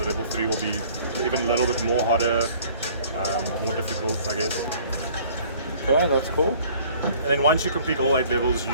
level 3 will be even a little bit more harder, more difficult, I guess. Okay, that's cool. And then once you complete all 8 levels,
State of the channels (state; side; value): inverted; both; correlation -0.54